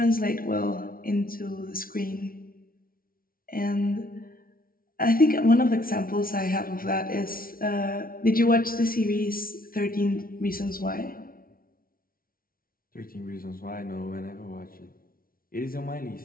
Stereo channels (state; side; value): late; right; 0.43 ms